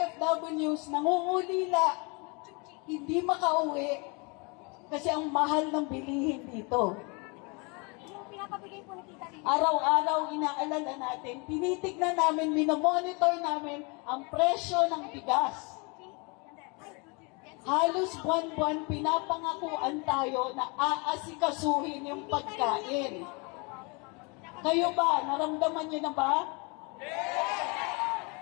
nangungulila, hindi makauwi kasi ang mahal ng bilihin dito. Araw-araw inaalala natin, tinitignan namin, minomonitor namin ang presyo ng bigas. Halos buwan-buwan pinapangakuan tayo na aasikasuhin yung pagkain. Kayo ba? Naramdaman niyo na ba?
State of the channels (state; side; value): quieter; right; 30.9 dB